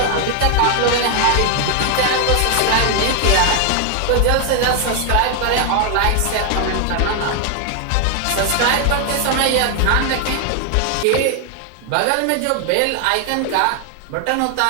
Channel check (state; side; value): different; both; correlation 0.00